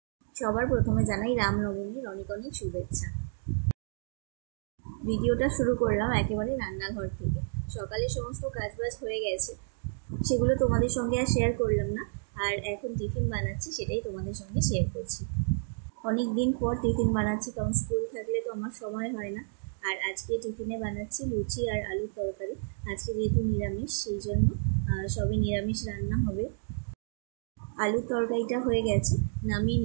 সবার প্রথমে জানাই রামনবমীর অনেক অনেক শুভেচ্ছা। ভিডিওটা শুরু করলাম একেবারে রান্নাঘর থেকে। সকালে সমস্ত কাজবাজ হয়ে গেছে, সেগুলো তোমাদের সঙ্গে আর শেয়ার করলাম না। আর এখন টিফিন বানাচ্ছি, সেটাই তোমাদের সঙ্গে শেয়ার করছি। অনেক দিন পর টিফিন বানাচ্ছি, কারণ স্কুল থাকলে তো আমার সময় হয় না। আর আজকে টিফিনে বানাচ্ছি লুচি আর আলুর তরকারি। আজকে যেহেতু নিরামিষ, সেই জন্য সবে নিরামিষ রান্না হবে। আলুর তরকারিটা হয়ে গেছে, নামিয়ে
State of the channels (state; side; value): silent; left; digital silence